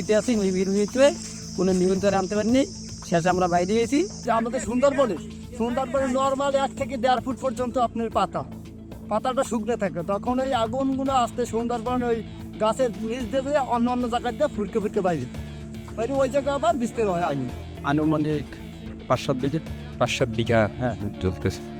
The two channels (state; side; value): identical; both; correlation 1.00